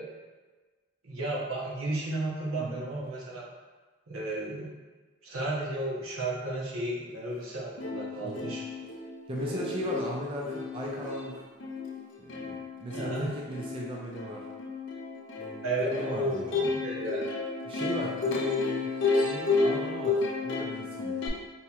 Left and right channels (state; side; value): normal; both; correlation 0.47